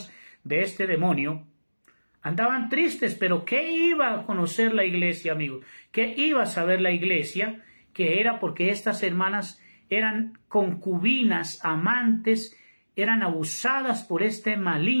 de este demonio, andaban tristes, pero ¿qué iba a conocer la iglesia, amigos? ¿Qué iba a saber la iglesia? Que era porque estas hermanas eran concubinas, amantes, eran abusadas por este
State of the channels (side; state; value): both; inverted; correlation -1.00